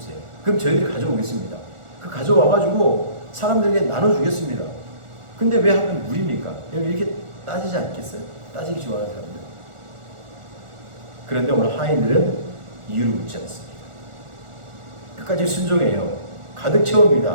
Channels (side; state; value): left; late; 1.4 ms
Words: 그럼 저희들이 가져오겠습니다. 그 가져와가지고 사람들에게 나눠주겠습니다. 근데 왜 하면 물입니까? 이렇게 따지지 않겠어요? 따지기 좋아하는 사람들. 그런데 오늘 하인들은 이유를 묻지 않습니다. 끝까지 순종해요. 가득